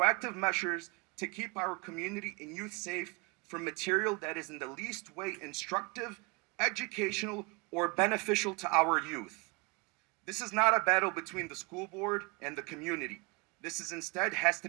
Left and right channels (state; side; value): quieter; left; 29.5 dB